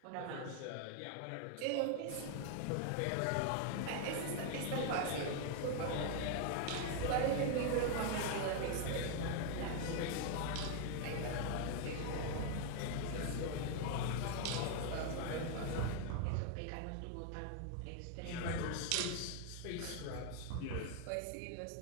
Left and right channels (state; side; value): different; both; correlation 0.00